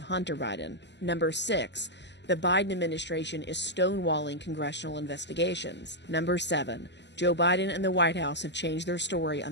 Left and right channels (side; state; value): right; late; 0.51 ms